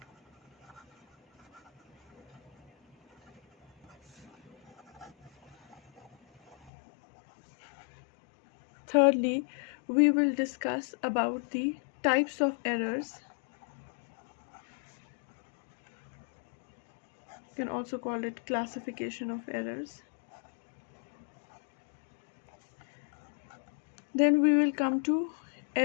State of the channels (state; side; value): drops out; right; at 6.7 s